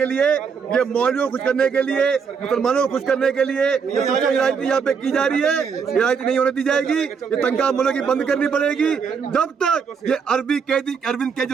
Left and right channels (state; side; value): quieter; left; 6.1 dB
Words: लिए, ये मौलवियों को खुश करने के लिए, मुसलमानों को खुश करने के लिए ये राजनीति यहाँ पे की जा रही है। ये राजनीति नहीं होने दी जाएगी। ये तनख्वाह मूल्यों की बंद करनी पड़ेगी। जब तक ये अरविंद